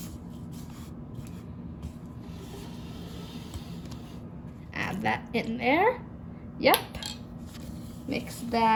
Add that in there. Yep. Mix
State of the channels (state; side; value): identical; both; correlation 1.00